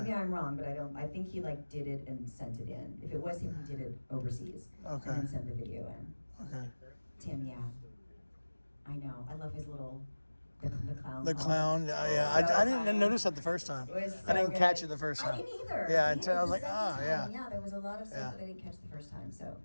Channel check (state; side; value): inverted; both; correlation -1.00